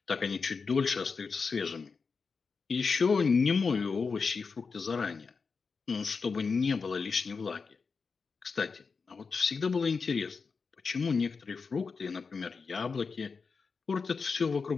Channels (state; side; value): quieter; right; 5.0 dB